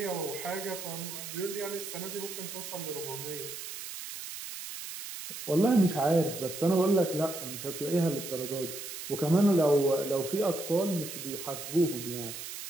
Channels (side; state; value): right; noise; hiss, 9 dB below the sound